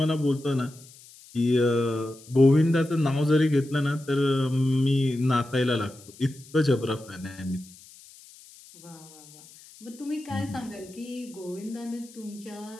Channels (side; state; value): left; noise; hiss, 22 dB below the sound